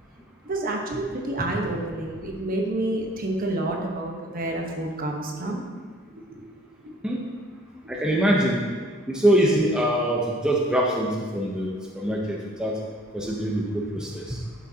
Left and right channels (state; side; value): normal; both; correlation 0.57